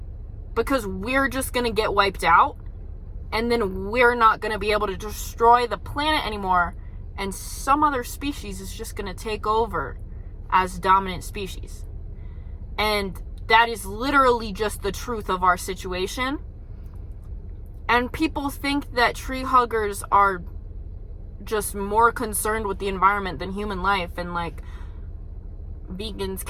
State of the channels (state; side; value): identical; both; correlation 1.00